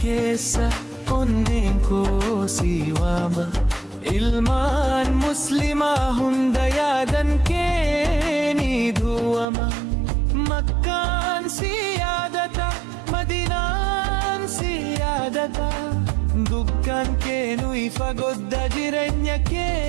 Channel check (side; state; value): left; drops out; at 9.5 s